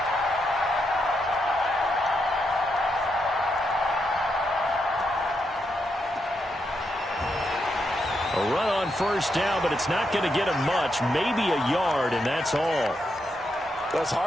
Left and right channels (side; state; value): both; normal; correlation 0.82